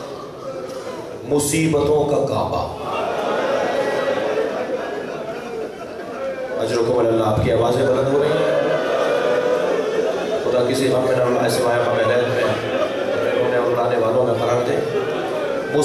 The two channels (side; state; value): both; identical; correlation 1.00